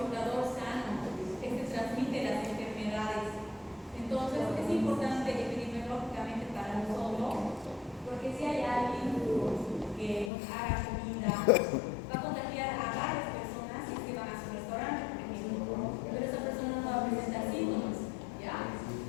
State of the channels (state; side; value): drops out; right; at 10.3 s